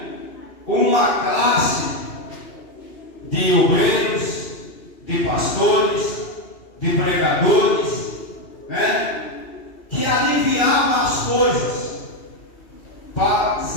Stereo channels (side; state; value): right; late; 2.8 ms